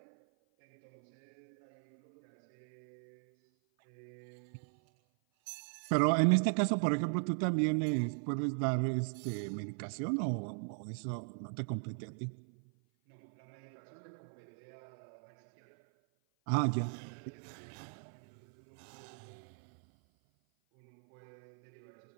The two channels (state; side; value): silent; left; 52 dB below the other